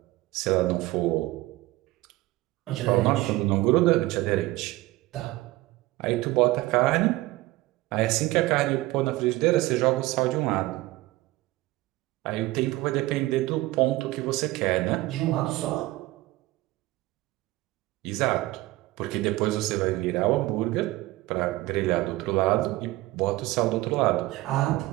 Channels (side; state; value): left; quieter; 18.9 dB